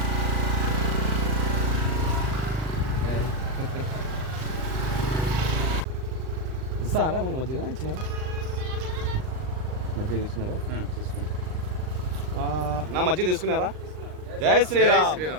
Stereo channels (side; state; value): left; late; 39 ms